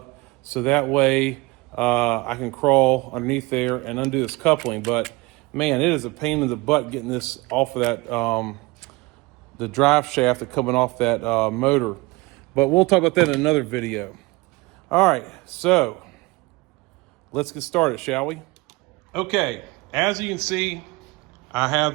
so that way I can crawl underneath there and undo this coupling. But man, it is a pain in the butt getting this off of that the drive shaft that's coming off that motor. But we'll talk about that in another video. All right, so let's get started, shall we? Okay, as you can see, I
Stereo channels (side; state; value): left; quieter; 23.4 dB